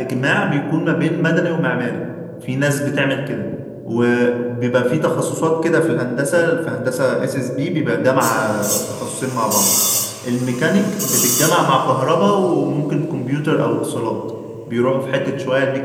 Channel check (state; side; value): identical; both; correlation 1.00